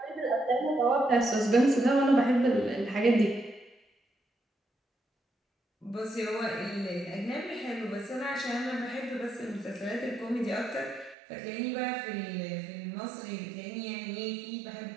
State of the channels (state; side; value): drops out; left; at 11.2 s